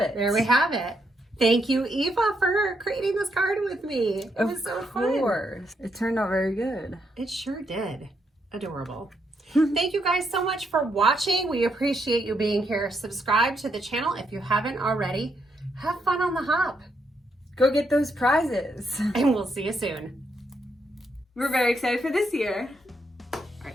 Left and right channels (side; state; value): both; normal; correlation 0.78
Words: There we have it. Thank you, Eva, for creating this card with me. It was so fun. Of course. It turned out very good. It sure did. Adorable. Thank you guys so much for watching. We appreciate you being here. Subscribe to the channel if you haven't already. Have fun on the hop. Go get those prizes. And we'll see you soon. We're very excited for this year. All